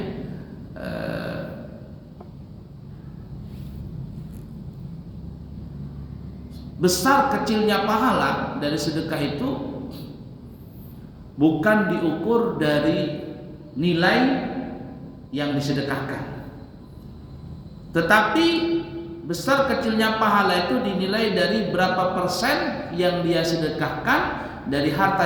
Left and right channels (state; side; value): identical; both; correlation 1.00